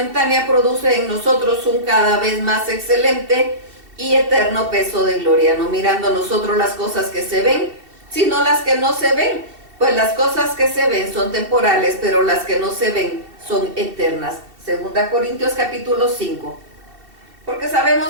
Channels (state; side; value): late; left; 2.7 ms